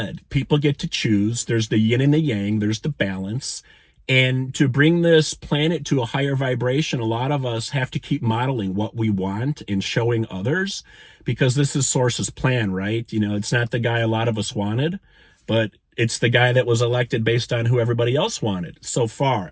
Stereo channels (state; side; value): identical; both; correlation 1.00